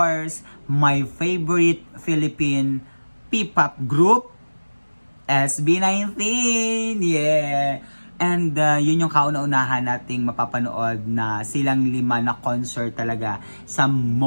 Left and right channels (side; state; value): both; inverted; correlation -1.00